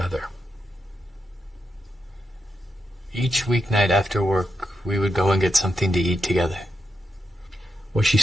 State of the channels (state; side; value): normal; both; correlation 0.85